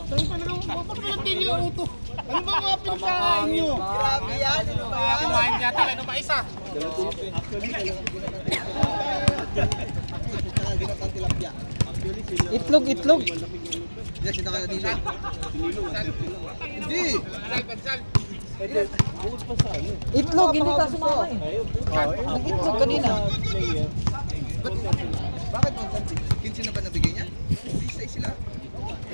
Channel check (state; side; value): inverted; both; correlation -1.00